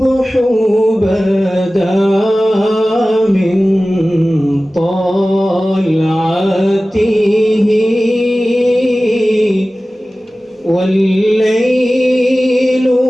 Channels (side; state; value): both; normal; correlation 0.97